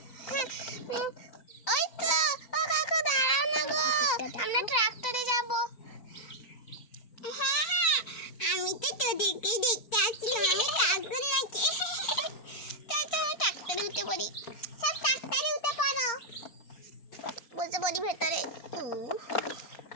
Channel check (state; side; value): late; right; 4.3 ms